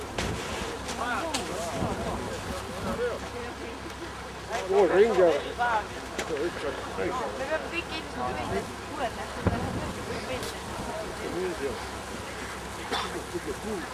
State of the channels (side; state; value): both; identical; correlation 1.00